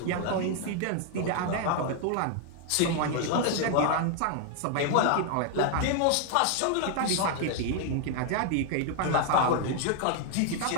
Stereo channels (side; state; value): both; different; correlation 0.00